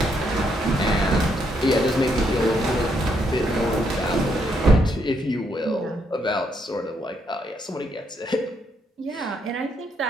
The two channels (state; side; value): normal; both; correlation 0.75